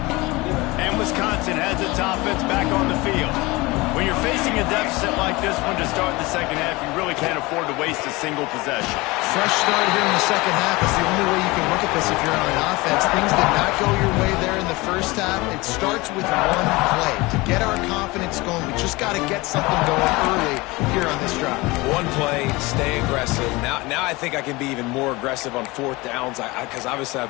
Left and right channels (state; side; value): quieter; right; 22.7 dB